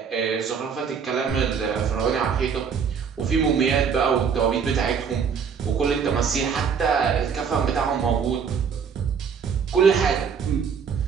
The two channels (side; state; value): left; quieter; 6.6 dB